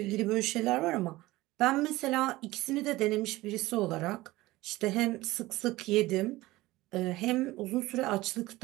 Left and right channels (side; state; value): left; quieter; 18.7 dB